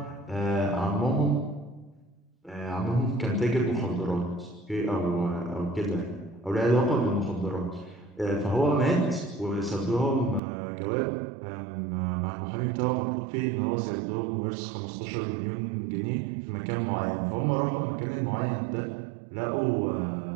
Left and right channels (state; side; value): drops out; left; at 10.4 s